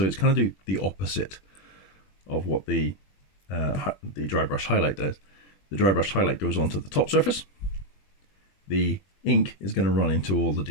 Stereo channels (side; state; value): right; late; 21 ms